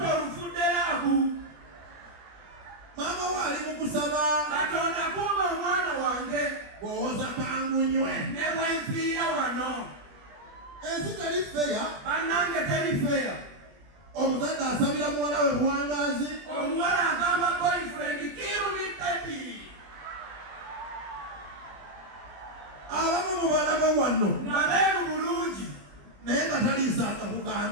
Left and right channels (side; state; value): left; late; 20 ms